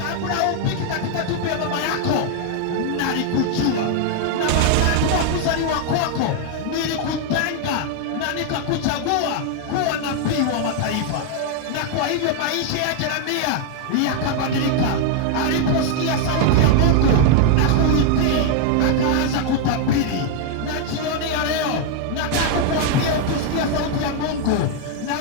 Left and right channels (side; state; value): both; different; correlation 0.00